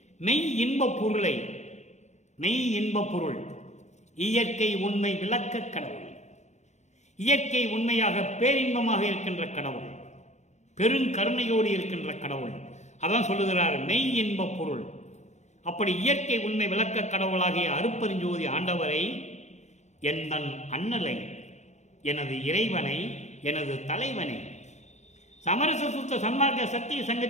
மெய் இன்பப் பொருளை, மெய் இன்பப் பொருள், இயற்கை உண்மை விளக்க கடவுள், இயற்கை உண்மையாக பேரின்பமாக இருக்கின்ற கடவுள், பெருங்கருணையோடு இருக்கின்ற கடவுள். அதான் சொல்லுகிறார் மெய் இன்பப் பொருள். அப்படி இயற்கை உண்மை விளக்க கடவுளாகிய அருப்பெருஞ்சோதி ஆண்டவரை, என் அண்ணலை, எனது இறைவனை, எனது தலைவனை, சமரச சுத்த சன்மார்க்க சத்திய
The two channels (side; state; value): right; late; 0.33 ms